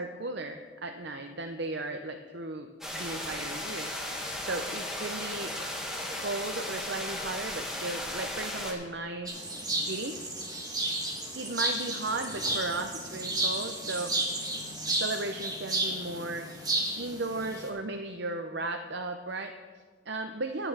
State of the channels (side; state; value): both; normal; correlation 0.01